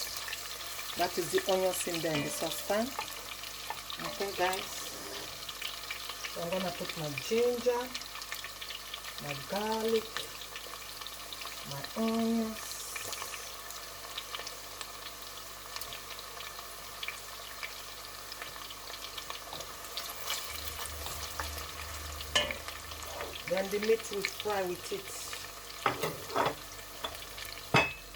That is the onions in there in the saucepan. Okay, guys. So I'm gonna put my ginger, my garlic, my onions. Then the meat will fry with it.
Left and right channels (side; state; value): right; noise; hum, 17 dB below the sound